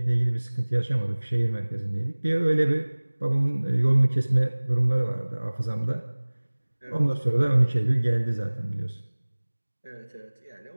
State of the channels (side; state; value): both; inverted; correlation -1.00